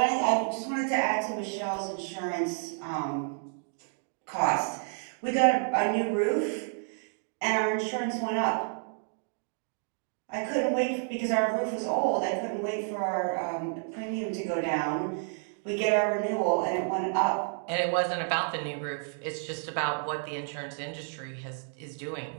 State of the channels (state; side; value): silent; left; 58 dB below the other